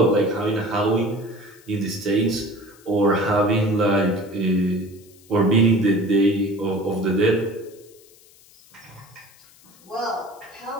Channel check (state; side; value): noise; left; hiss, 26 dB below the sound